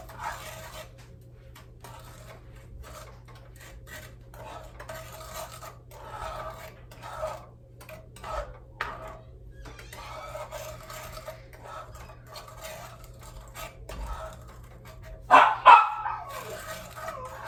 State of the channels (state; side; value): identical; both; correlation 1.00